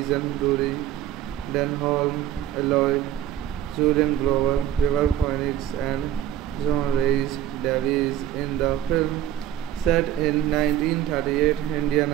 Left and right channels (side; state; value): left; quieter; 11.4 dB